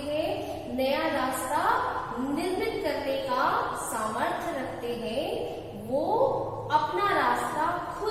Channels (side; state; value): both; identical; correlation 1.00